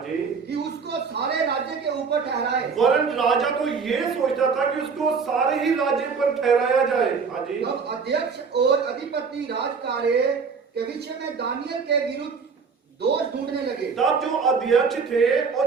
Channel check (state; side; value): quieter; left; 5.4 dB